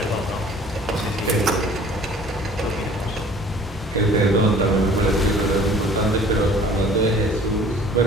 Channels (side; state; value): both; normal; correlation 0.50